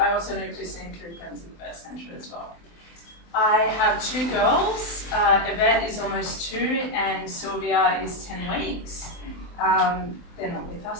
also know Christine through friends with Birth Centre as well. I have two girls. Yvette is almost 2 and Sylvia is 10 weeks. They're not with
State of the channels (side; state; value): right; late; 24 ms